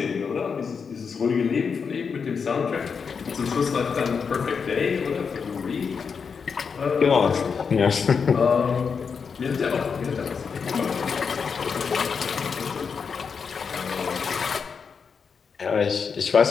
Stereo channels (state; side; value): quieter; right; 5.9 dB